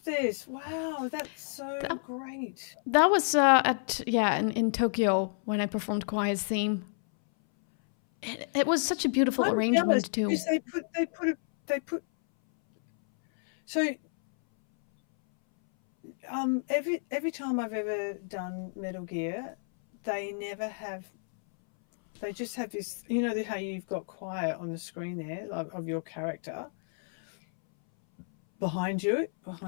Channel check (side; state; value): right; silent; 58 dB below the other